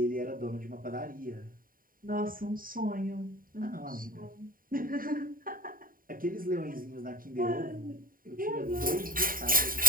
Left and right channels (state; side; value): late; left; 0.41 ms